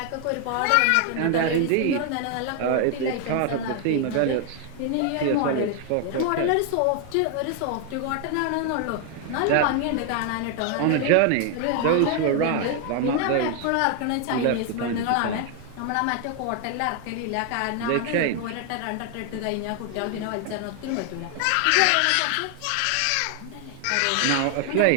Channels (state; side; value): different; both; correlation 0.00